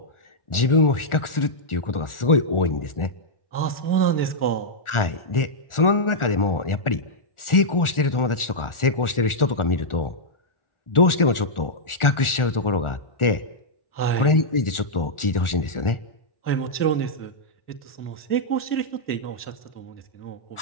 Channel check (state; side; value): late; right; 1.4 ms